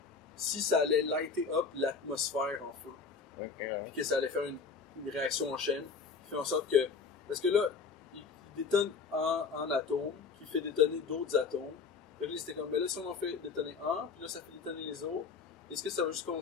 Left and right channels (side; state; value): right; quieter; 5.2 dB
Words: si ça allait lighter up l'atmosphère en feu. Ok, ouais. puis que ça allait faire une réaction en chaîne qui fait en sorte que... Parce que là, il détonne un atome qui fait détonner d'autres atomes. Fait que là, c'était comme, mais là, si on en fait détonner un, puis là, ça fait détonner les autres, est-ce que ça va juste